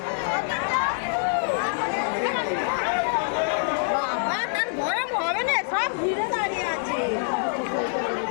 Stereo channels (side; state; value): right; silent; digital silence